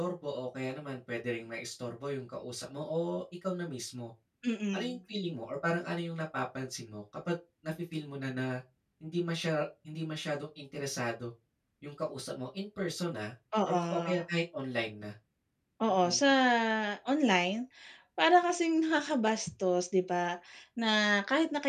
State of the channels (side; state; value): both; identical; correlation 1.00